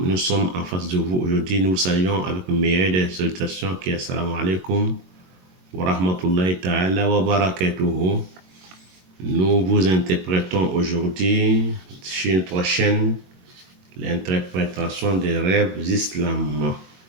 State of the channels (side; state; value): left; late; 22 ms